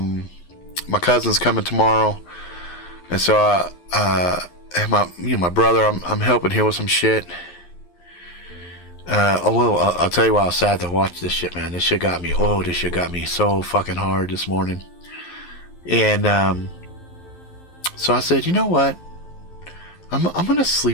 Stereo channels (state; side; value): late; right; 11 ms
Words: cousin's coming tomorrow, and so my brother, I'm helping him with some shit. I'll tell you why I was sad to watch this shit, man. This shit got me so fucking hard this morning. And so I said, you know what? I'm gonna